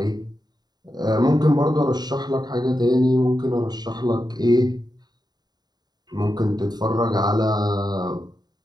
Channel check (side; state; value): left; late; 0.20 ms